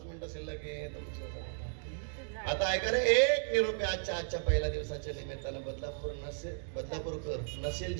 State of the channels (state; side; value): silent; left; digital silence